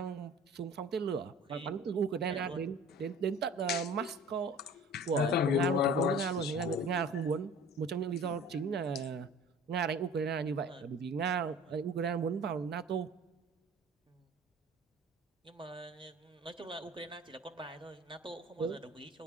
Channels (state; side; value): normal; both; correlation 0.44